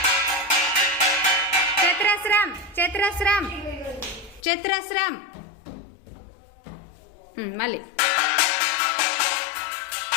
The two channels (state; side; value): drops out; right; at 4.4 s